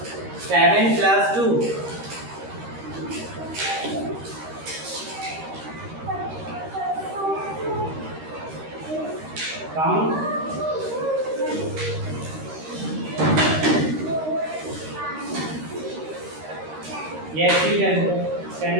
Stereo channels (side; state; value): left; late; 13 ms